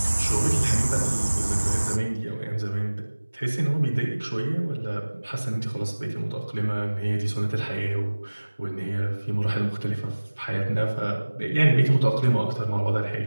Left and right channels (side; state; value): both; inverted; correlation -1.00